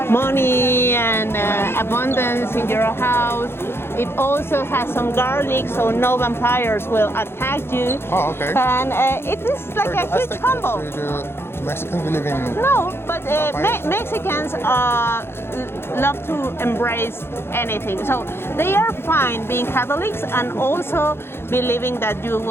money and abundance in your house. It also has some garlic, so no vampires will attack you. Oh, okay. And it is like a huge combo. Mexicans believe in... No, but Mexicans love to embrace anything. So they are fine being Catholics and also believing that you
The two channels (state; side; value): late; right; 0.11 ms